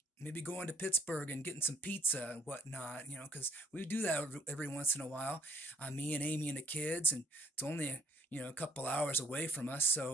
maybe going to Pittsburgh and getting some pizza and whatnot, because we do that every once in a while. Me and Amy and the kids, and it's only a couple hours away from us.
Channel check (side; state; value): both; normal; correlation 0.62